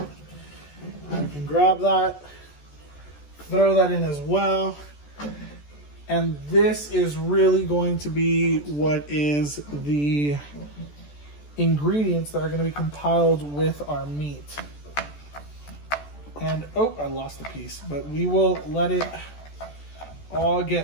you can grab that, throw that in as well. And this is really going to be what is the ingredients that are going to be compiled with our meat. And, oh, I lost a piece, but we will let it all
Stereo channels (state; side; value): late; right; 14 ms